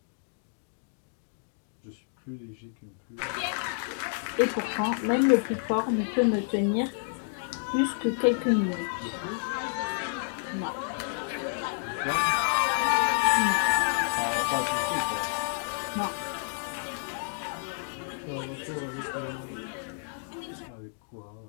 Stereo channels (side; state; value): right; silent; digital silence